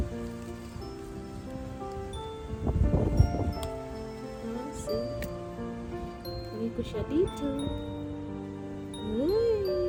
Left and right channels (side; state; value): both; identical; correlation 1.00